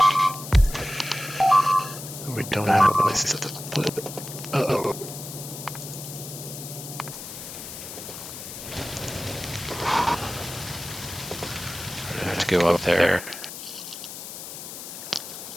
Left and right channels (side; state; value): left; noise; hiss, 10 dB below the sound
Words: We don't have a place to put. Uh-oh. I have to go up there.